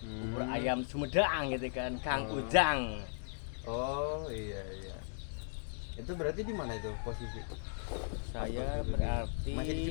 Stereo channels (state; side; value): silent; right; digital silence